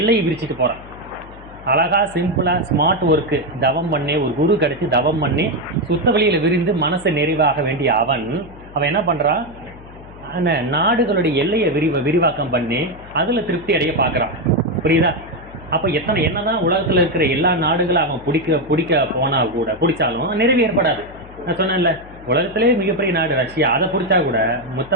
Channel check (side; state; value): left; noise; hum, 19 dB below the sound